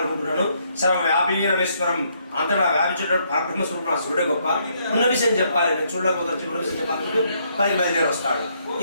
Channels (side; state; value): both; inverted; correlation -0.72